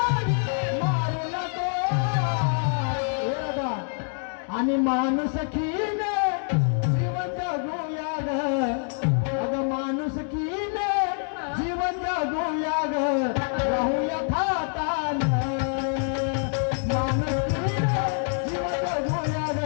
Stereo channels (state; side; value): silent; right; 58 dB below the other